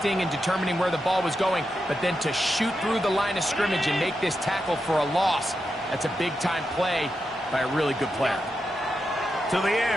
and determining where the ball was going, but then to shoot through the line of scrimmage and make this tackle for a loss. That's a big-time play by a really good player. To the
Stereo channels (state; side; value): normal; both; correlation 0.87